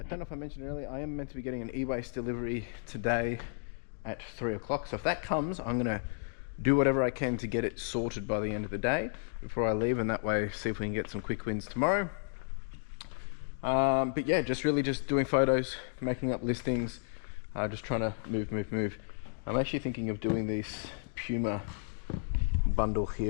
don't know if I mentioned earlier, I am meant to be getting an e-waste delivery today at 3 o'clock. So if that comes, I'm going to do whatever I can to get it sorted by the end of the day before I leave, and that way see if we can get some quick wins tomorrow. But yeah, just doing photos, making up listings, just trying to move. I'm actually thinking of doing this Puma bundle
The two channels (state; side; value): silent; right; digital silence